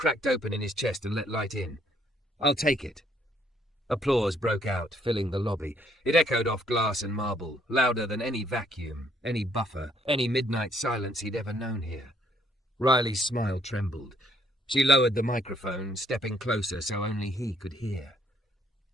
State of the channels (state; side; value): normal; both; correlation 0.67